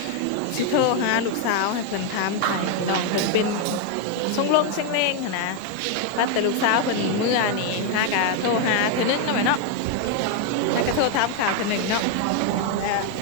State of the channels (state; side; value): different; both; correlation 0.01